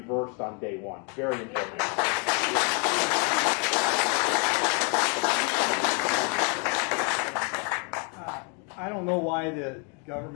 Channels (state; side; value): quieter; right; 36.3 dB